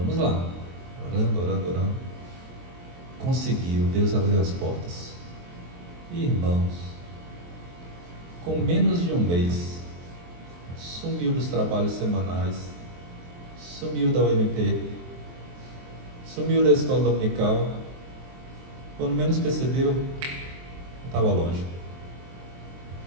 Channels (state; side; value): late; left; 23 ms